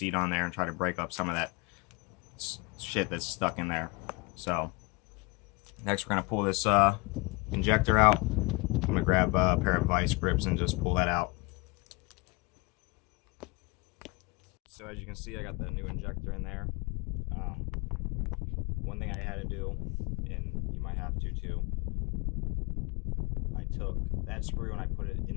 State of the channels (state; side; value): quieter; right; 26.9 dB